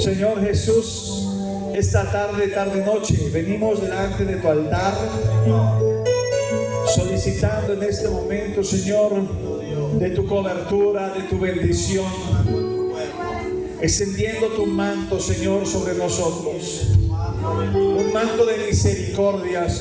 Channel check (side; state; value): both; identical; correlation 1.00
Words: Jesús, esta tarde, noche, venimos delante de tu altar, solicitando en este momento, Señor, de tu cobertura, de tu bendición, extendiendo tu manto, Señor, sobre nosotros. Un manto de misericordia,